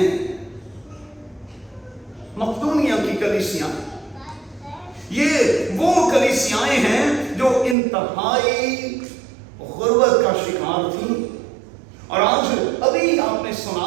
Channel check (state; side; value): drops out; left; at 7.8 s